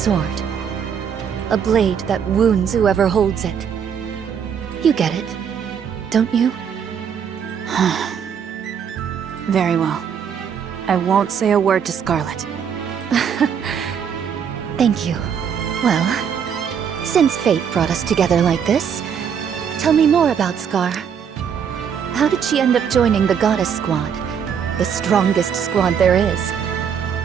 A blade that wounds whoever holds it. You get it, don't you? Very well. I won't say a word to Scarlet. Thank you. Well, since fate brought us together like this, tell me more about Scar. How did she end up joining the Goddess Squad? The strongest squad there is.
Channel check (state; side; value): quieter; left; 7.6 dB